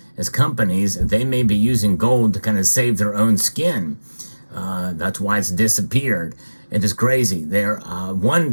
as companies, they may be using gold to kind of save their own skin. That's why it's disappeared. It is crazy.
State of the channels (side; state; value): both; inverted; correlation -1.00